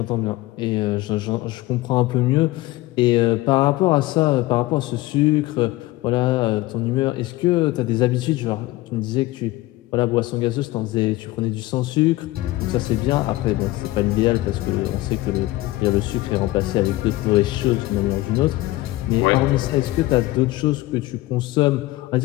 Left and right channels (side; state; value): right; quieter; 18.4 dB